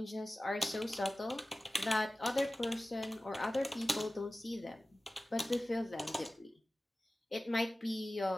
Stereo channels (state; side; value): normal; both; correlation 0.96